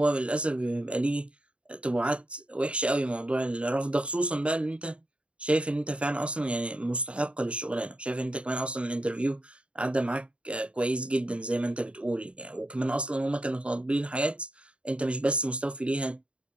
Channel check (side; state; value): left; late; 0.059 ms